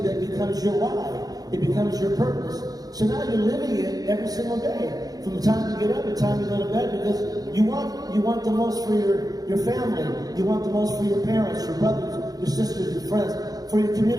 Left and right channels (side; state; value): left; late; 0.18 ms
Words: that becomes your why. It becomes your purpose. So now you're living it every single day, from the time you get up to the time you go to bed, because you want the most for your family, you want the most for your parents, your brothers, your sisters, your friends, for your